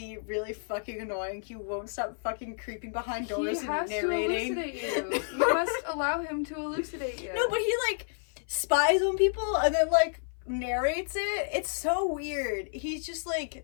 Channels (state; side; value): silent; right; 56 dB below the other